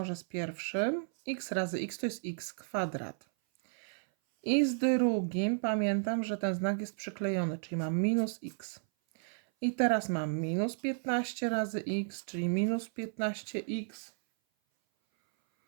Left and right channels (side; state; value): left; silent; 56 dB below the other